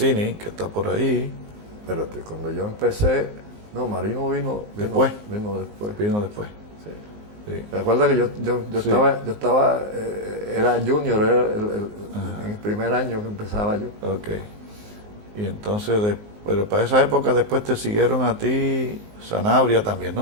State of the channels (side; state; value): left; late; 19 ms